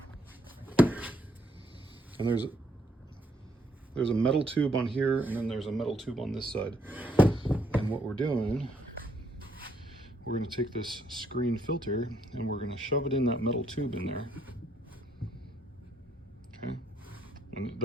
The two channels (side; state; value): both; normal; correlation 0.72